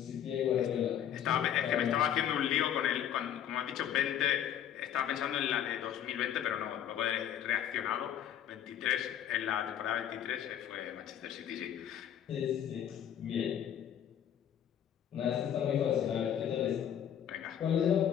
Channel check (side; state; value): right; quieter; 9.8 dB